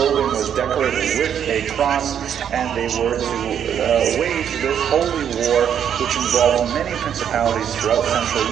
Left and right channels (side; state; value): left; quieter; 8.8 dB